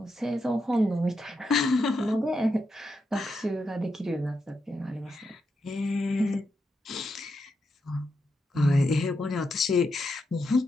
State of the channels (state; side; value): normal; both; correlation 0.84